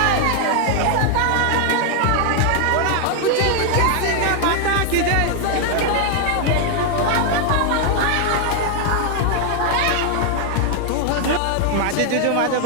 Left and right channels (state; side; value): different; both; correlation 0.00